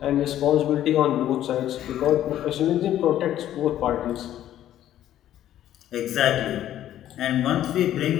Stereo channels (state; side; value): quieter; right; 12.1 dB